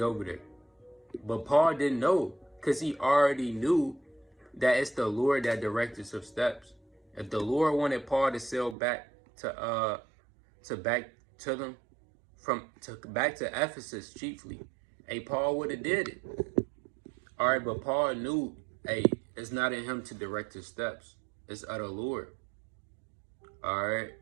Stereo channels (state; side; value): drops out; left; at 8.8 s